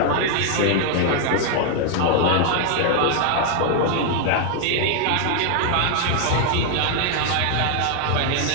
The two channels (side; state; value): both; different; correlation 0.00